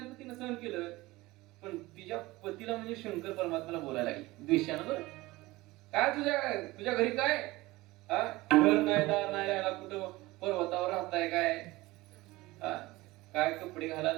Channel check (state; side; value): quieter; left; 20.0 dB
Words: तिनं सहन केलं, पण तिच्या पतीला म्हणजे शंकर परमात्म्याला बोलायला लागली द्वेषानं. बरं काय तुझ्या घरी काय घर नाही, दार नाही, राहायला कुठं पर्वतावर राहताय काय? काय कपडे